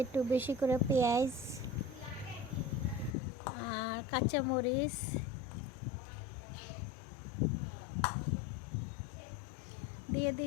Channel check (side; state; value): right; drops out; at 3.2 s